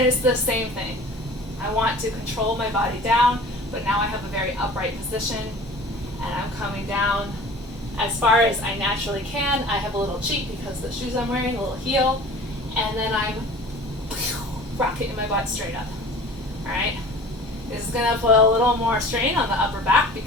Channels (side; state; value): both; normal; correlation 0.43